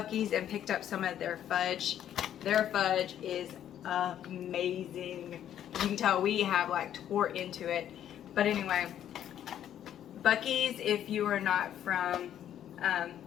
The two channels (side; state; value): right; quieter; 10.6 dB